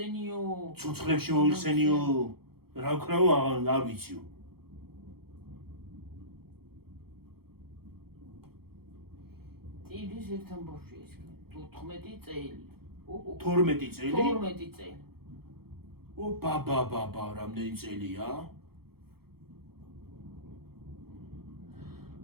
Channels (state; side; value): late; left; 0.95 ms